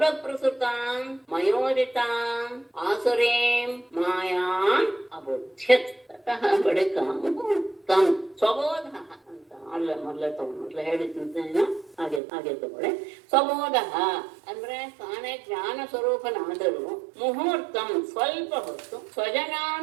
ಮಯೋದಿತಾಂ ಆಸುರೀಂ ಮಾಯಾಂ ಅಬುಧ್ಯತ್. ತತಃ ಬಳಿಕ ಮುಹೂರ್ತಂ ಸ್ವಬೋಧಃ ಅಂತ ಮೊದಲ ಹೇಳಿದ್ದೇನೆ, ಹಾಗೆ ತಗೊಳ್ಳಿ. ಸ್ವಬೋಧ ಅಂದ್ರೆ ತಾನೇ ಜ್ಞಾನ ಸ್ವರೂಪನಾದರೂ ಮುಹೂರ್ತಂ ಸ್ವಲ್ಪ ಹೊತ್ತು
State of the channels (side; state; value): left; drops out; at 12.2 s